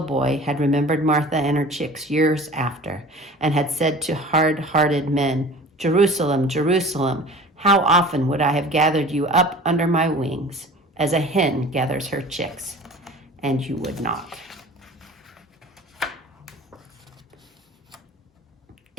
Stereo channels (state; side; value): normal; both; correlation 0.42